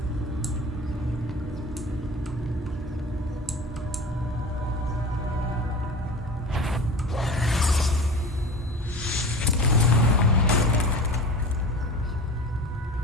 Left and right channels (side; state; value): both; normal; correlation 0.35